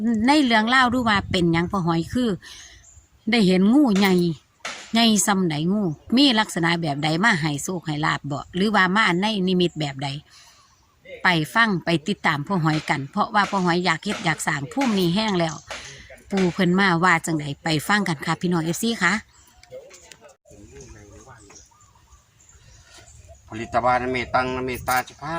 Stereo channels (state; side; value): identical; both; correlation 1.00